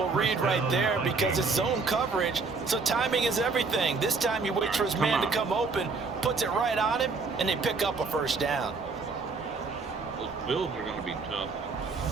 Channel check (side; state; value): left; quieter; 4.4 dB